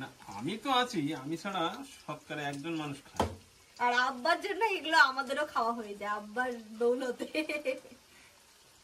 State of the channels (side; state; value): both; identical; correlation 1.00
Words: আমি তো আছি, আমি ছাড়া শতকরা 1জন মানুষ খায়। আর আব্বার জন্য এগুলো আমাদেরও খাওয়া হয়ে যায়, আব্বার দৌলতে।